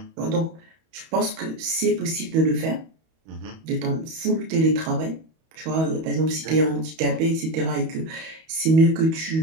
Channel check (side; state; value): left; late; 31 ms